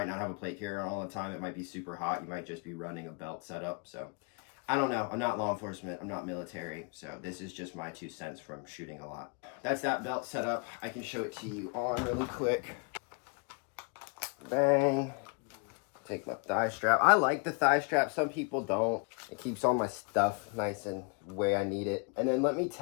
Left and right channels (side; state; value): right; quieter; 33.7 dB